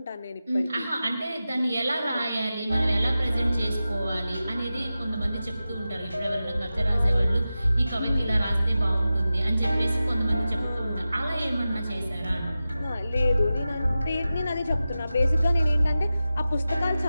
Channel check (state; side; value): inverted; both; correlation -0.94